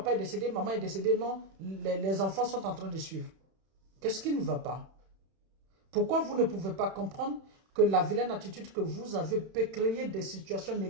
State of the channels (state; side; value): late; left; 31 ms